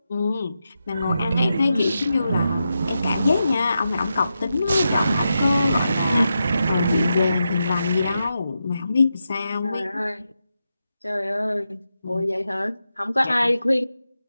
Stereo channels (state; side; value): inverted; both; correlation -0.88